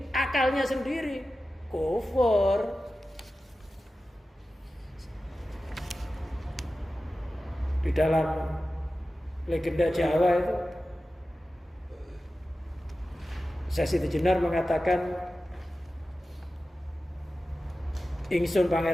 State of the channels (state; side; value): normal; both; correlation 0.94